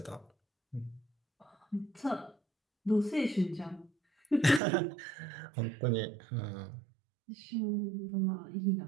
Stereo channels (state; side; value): drops out; left; at 4.6 s